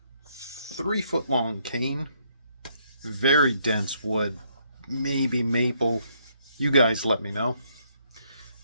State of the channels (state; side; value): inverted; both; correlation -0.71